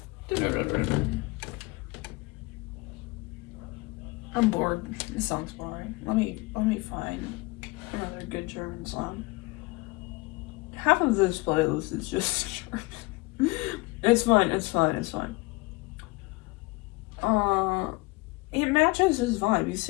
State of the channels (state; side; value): quieter; right; 23.4 dB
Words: I'm bored. This song's boring. Let me find another good German song. Half of this playlist is just German. It's fine. It matches his vibe. He's